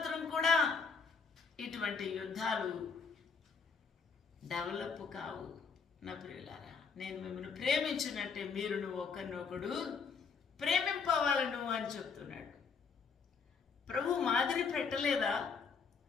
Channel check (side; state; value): right; quieter; 5.5 dB